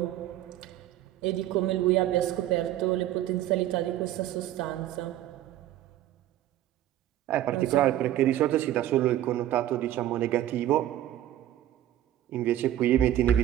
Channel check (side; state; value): left; quieter; 13.0 dB